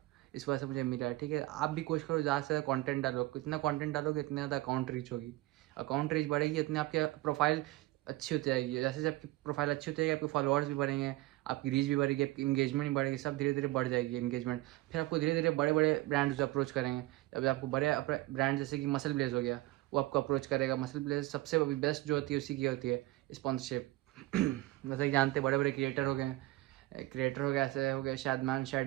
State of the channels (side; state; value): left; quieter; 18.7 dB